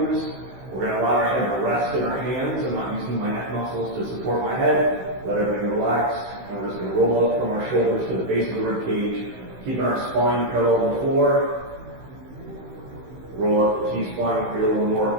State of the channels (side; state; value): left; late; 16 ms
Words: We're going to allow our head to rest in our hands. I'm not using my neck muscles to support my head. Let everything relax. And we're just going to roll up from our shoulders to the base of the rib cage, keeping our spine parallel to the floor. Roll up the T-spine, create a little